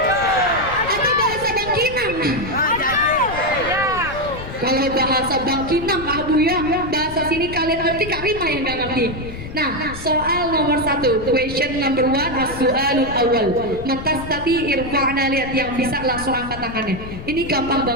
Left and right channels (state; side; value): noise; left; rumble, 11 dB below the sound